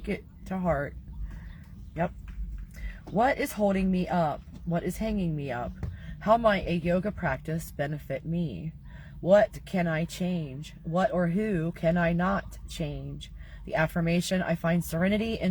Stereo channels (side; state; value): both; identical; correlation 1.00